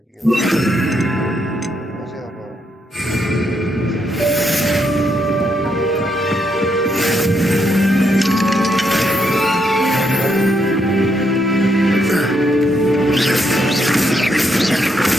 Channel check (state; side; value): normal; both; correlation 0.77